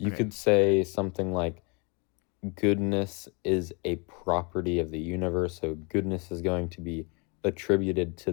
Okay. could say something like goodness is a property of the universe, so goodness is going to be attributed to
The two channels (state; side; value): quieter; right; 31.7 dB